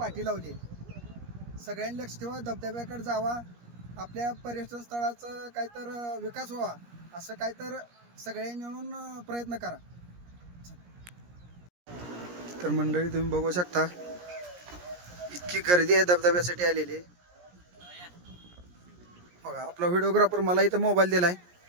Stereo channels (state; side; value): late; left; 17 ms